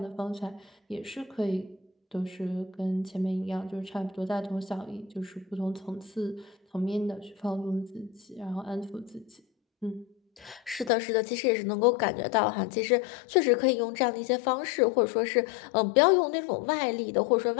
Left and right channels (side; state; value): right; drops out; at 10.9 s